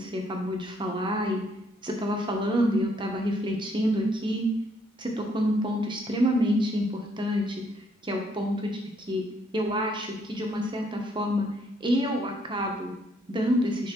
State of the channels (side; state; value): both; normal; correlation 0.69